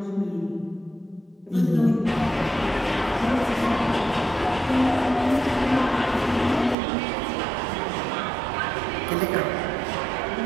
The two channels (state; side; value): drops out; left; at 6.8 s